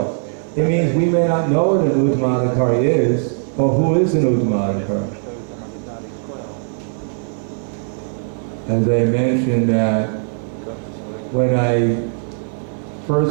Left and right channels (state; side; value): silent; left; digital silence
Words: It means we may not know what an Uttamadhikari is, or who is an Uttamadhikari. as I mentioned, that when I